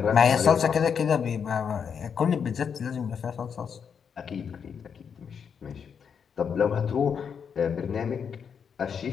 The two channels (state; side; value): quieter; right; 7.0 dB